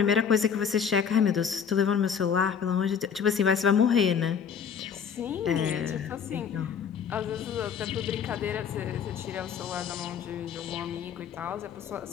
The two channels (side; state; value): right; quieter; 7.2 dB